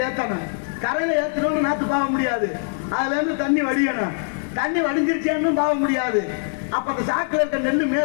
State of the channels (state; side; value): silent; right; 64 dB below the other